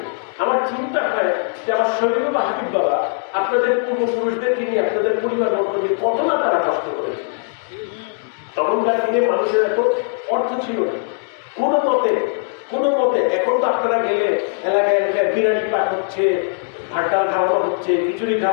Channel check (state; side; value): silent; right; digital silence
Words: আমার চিন্তা হয় যে আমার শফি বাবা, হাবিব বাবা আপনাদের পূর্বপুরুষদেরকে নিয়ে, আপনাদের পরিবার বর্গ নিয়ে কত না তারা কষ্ট করেছে। তখনকার দিনে মানুষের এত অর্থ ছিল না কোনো মতে। এখন তো আপনারা গেলে এলাকায় এলাকায় বিরিয়ানি পাক হচ্ছে, ভাত ডাল খাওয়ানো হচ্ছে, খিচুড়ি